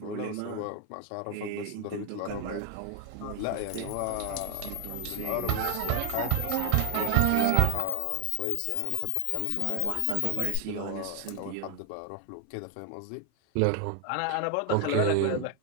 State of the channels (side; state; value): both; different; correlation 0.00